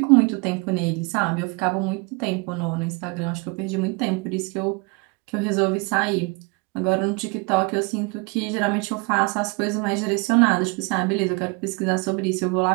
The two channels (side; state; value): left; quieter; 30.1 dB